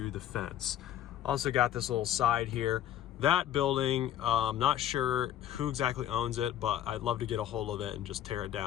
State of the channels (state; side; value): quieter; right; 11.6 dB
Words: the fence. Also got this little side here. That building, not sure who exactly owns it, but I'd love to get a hold of it and just tear it